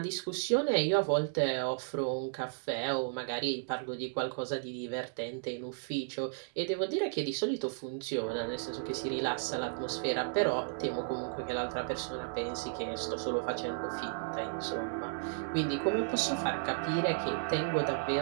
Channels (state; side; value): silent; left; digital silence